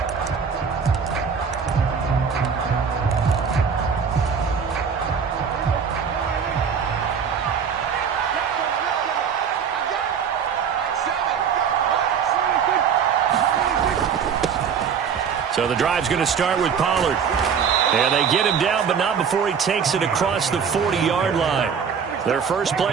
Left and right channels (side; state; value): left; quieter; 6.8 dB